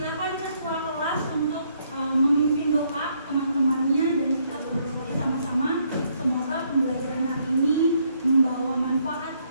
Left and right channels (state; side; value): inverted; both; correlation -0.71